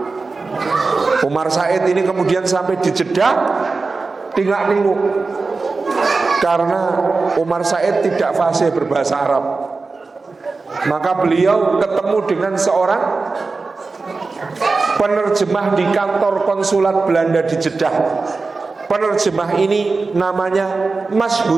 Umar Said ini kemudian sampai di Jeddah tinggal ninguk karena Umar Said tidak fasih berbahasa Arab. Maka beliau ketemu dengan seorang penerjemah di kantor konsulat Belanda di Jeddah. Penerjemah ini namanya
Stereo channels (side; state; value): left; quieter; 4.0 dB